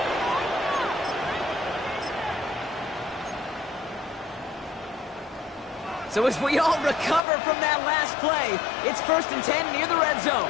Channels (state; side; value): drops out; right; at 7.2 s